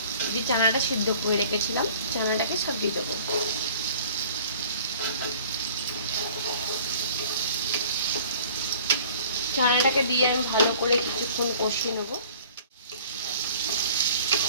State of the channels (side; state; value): both; inverted; correlation -0.50